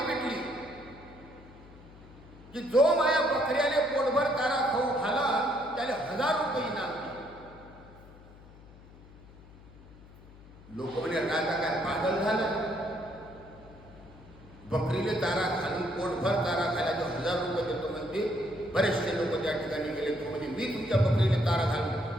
पिटली की जो माया बकऱ्याने पोटभर तारा खाऊ खाला त्याला 1000 रुपये इनाम दिले. लोक म्हणे राजा काय पागल झाला? बकरीले तारा घालून पोटभर तारा खायला जो 1000 रुपये देतो म्हणते. बरेचसे लोक त्या ठिकाणी गेले. तो म्हणजे मी तुमच्या बकरीने तारा घालून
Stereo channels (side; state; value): left; noise; hum, 21 dB below the sound